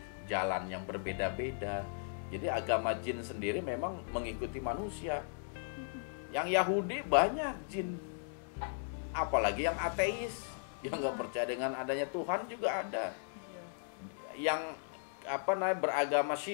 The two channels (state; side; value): silent; right; digital silence